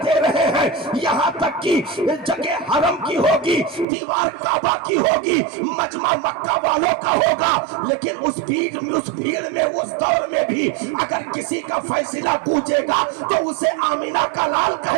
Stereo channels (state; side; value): drops out; left; at 3.9 s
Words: رہے ہیں۔ یہاں تک کہ جگہ حرم کی ہوگی، دیوار کعبہ کی ہوگی، مجمع مکہ والوں کا ہوگا، لیکن اس بھیڑ میں اس دور میں بھی اگر کسی کا فیصلہ گونجے گا تو اسے آمینہ کا لال